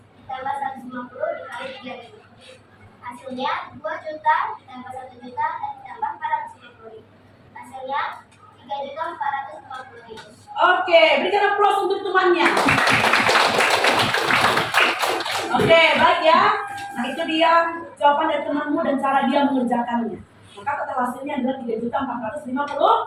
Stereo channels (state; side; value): identical; both; correlation 1.00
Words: ditambah 150 dikali 3.000. Hasilnya 2 juta ditambah 1 juta dan ditambah 450.000. Hasilnya 3.450.000. Oke, berikan aplaus untuk temannya. Oke, baik ya. Nah, itu dia jawaban dari temanmu dan cara dia mengerjakannya. Maka total hasilnya adalah 3.450.000.